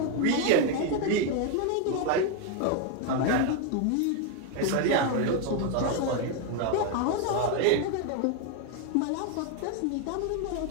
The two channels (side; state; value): both; different; correlation 0.01